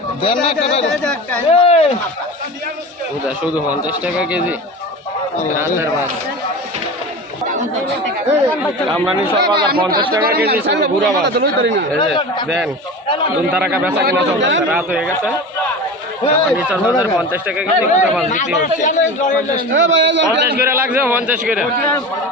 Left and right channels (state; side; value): normal; both; correlation 0.31